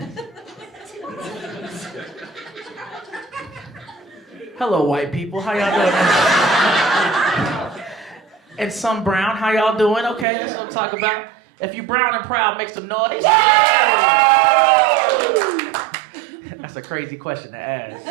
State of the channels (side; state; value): left; drops out; at 10.2 s